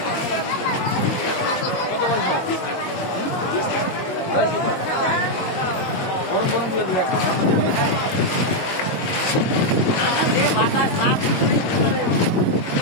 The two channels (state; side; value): late; right; 22 ms